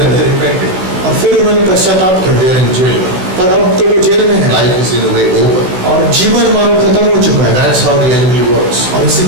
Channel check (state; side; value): late; left; 16 ms